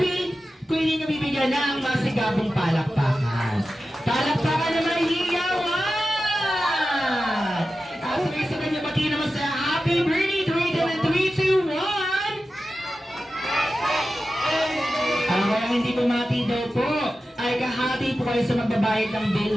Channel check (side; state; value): both; normal; correlation 0.93